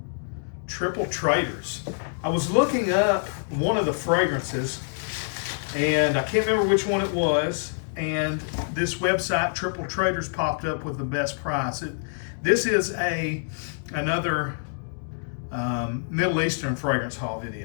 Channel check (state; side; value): silent; right; digital silence